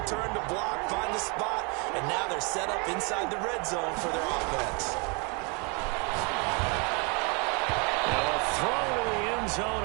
turned to block, find the spot, and now they're set up inside the red zone for their offense. Now a throw to the end zone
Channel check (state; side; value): quieter; left; 32.6 dB